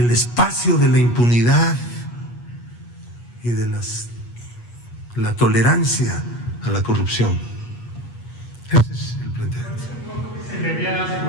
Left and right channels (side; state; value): right; late; 8.3 ms